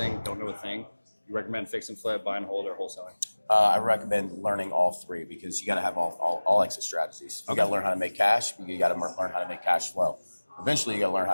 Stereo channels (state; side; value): inverted; both; correlation -1.00